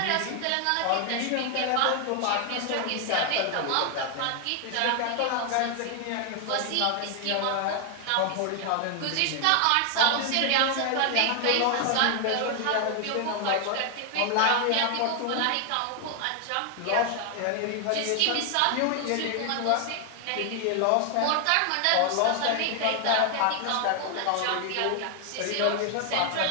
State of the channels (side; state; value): both; different; correlation 0.00